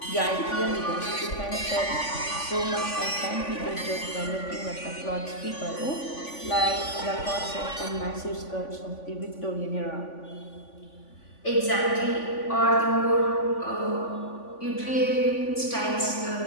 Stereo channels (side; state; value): right; late; 3.5 ms